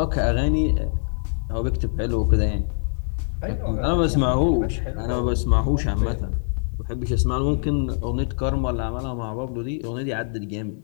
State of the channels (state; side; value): silent; right; digital silence